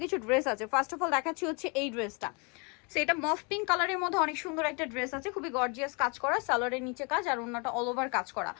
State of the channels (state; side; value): quieter; right; 32.6 dB